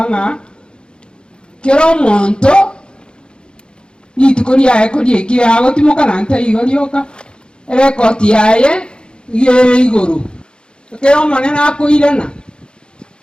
ng'a kero omonto rituko riaye koriekire agotimokana nta igo rioka erekoti yaye igere igoro kero omonene akoirana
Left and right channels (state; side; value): late; right; 0.051 ms